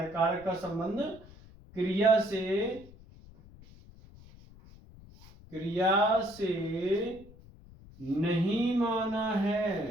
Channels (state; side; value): noise; left; rumble, 21 dB below the sound